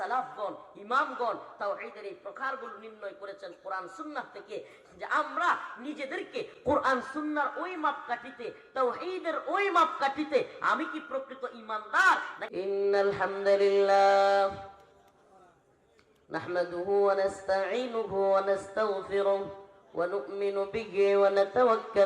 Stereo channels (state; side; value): identical; both; correlation 1.00